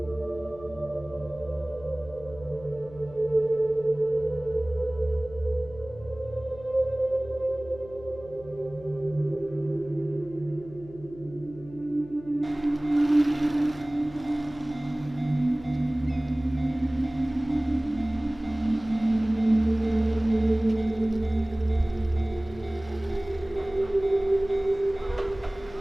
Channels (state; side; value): noise; left; hum, 19 dB below the sound